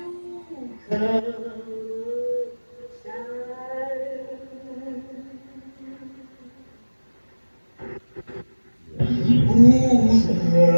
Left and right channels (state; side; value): inverted; both; correlation -1.00